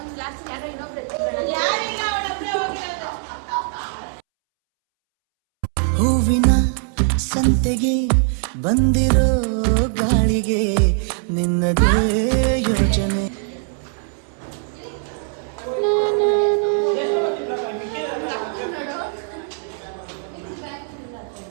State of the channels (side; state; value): left; silent; 65 dB below the other